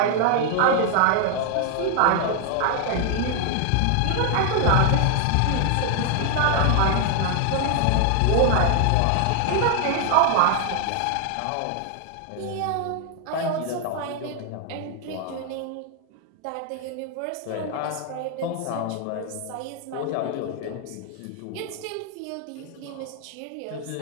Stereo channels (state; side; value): different; both; correlation 0.00